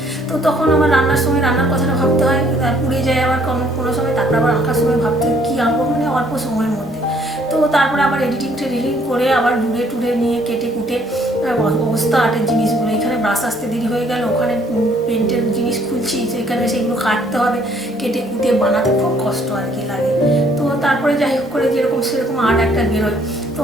তো তখন আমার রান্নার সময় রান্নার কথাটা ভাবতে হয়, পুড়ে যায় আবার কোনো সময়, তারপরে আবার আঁকার সময় ভাবতে হয় কী আঁকবো, মানে অল্প সময়ের মধ্যে। তো তারপরে আবার এডিটিং করে আবার টুরে নিয়ে কেটে কুটে অবস্থা আর্টের জিনিসগুলো, এখানে ব্রাশ আসতে দেরি হয়ে গেল, ওখানে পেন্টের জিনিস খুলছি, সেখানে সেগুলো কাটতে হবে, কেটে কুটে বানাতে খুব কষ্ট আর কি লাগে। তো তারপরে যাই হোক করে যেরকম সেরকম আর্ট একটা বেরোয়। তো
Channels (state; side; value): normal; both; correlation 0.63